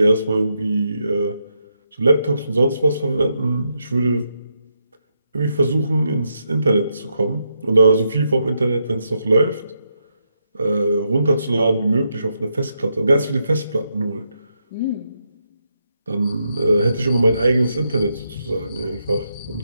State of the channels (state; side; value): inverted; both; correlation -0.82